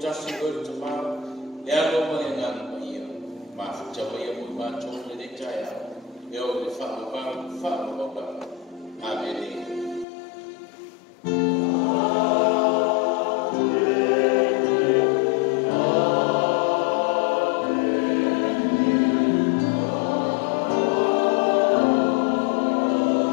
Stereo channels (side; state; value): right; drops out; at 10.1 s